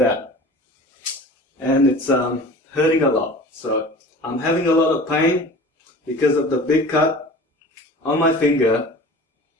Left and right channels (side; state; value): both; normal; correlation 0.40